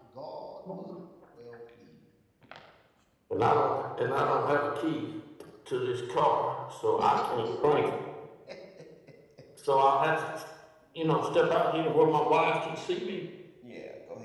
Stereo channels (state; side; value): identical; both; correlation 1.00